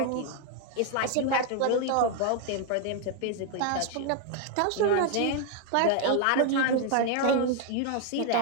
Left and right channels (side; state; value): both; different; correlation 0.01